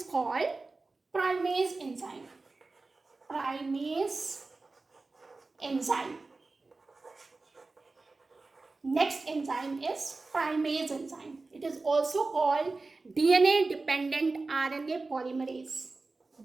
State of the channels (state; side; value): quieter; left; 3.6 dB